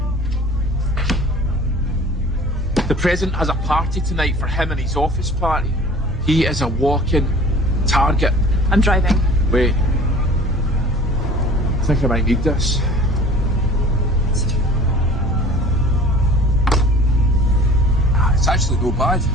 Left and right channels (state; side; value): normal; both; correlation 0.45